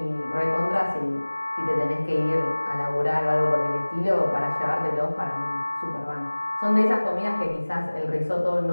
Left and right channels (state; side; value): inverted; both; correlation -1.00